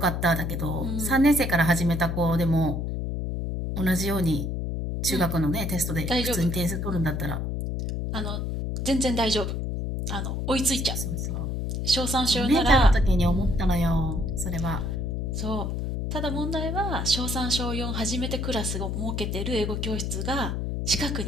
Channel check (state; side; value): noise; left; hum, 2 dB below the sound